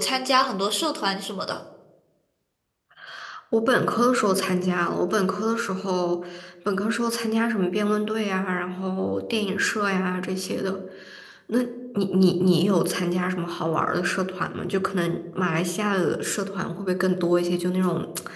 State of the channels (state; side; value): identical; both; correlation 1.00